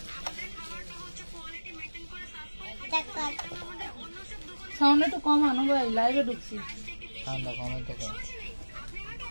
সাউন্ড একটু কম আনো ভাই, লাইভে ঢুকছি।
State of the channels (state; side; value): inverted; both; correlation -1.00